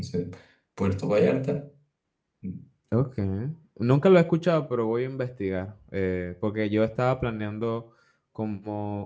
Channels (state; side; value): identical; both; correlation 1.00